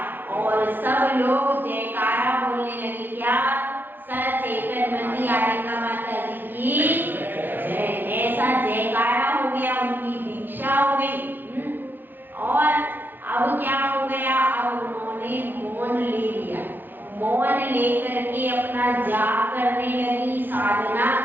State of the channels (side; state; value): left; late; 0.093 ms